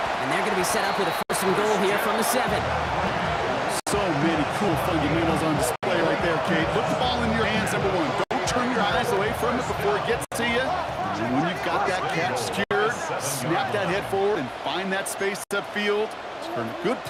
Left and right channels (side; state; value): both; identical; correlation 1.00